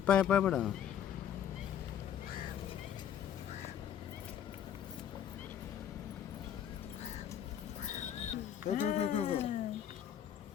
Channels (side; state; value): right; quieter; 9.6 dB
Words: पाय पाय पडा. go, go, go, go, go.